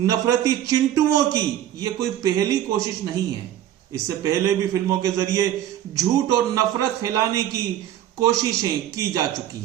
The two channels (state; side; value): quieter; left; 11.7 dB